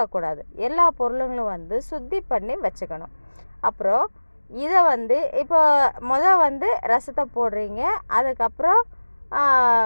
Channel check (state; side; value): inverted; both; correlation -1.00